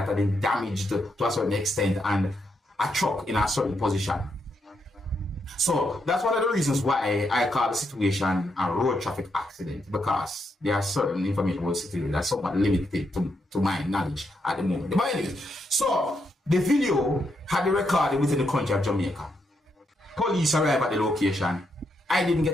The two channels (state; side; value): normal; both; correlation 0.80